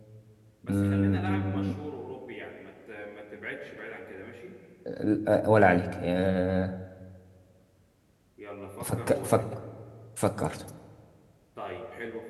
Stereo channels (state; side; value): identical; both; correlation 1.00